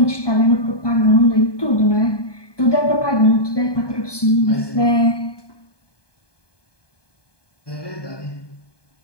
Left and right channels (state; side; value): late; right; 1.2 ms